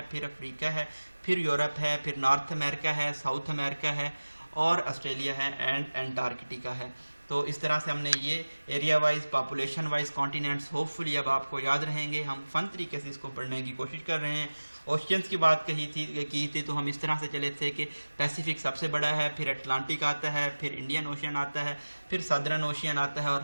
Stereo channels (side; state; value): both; inverted; correlation -1.00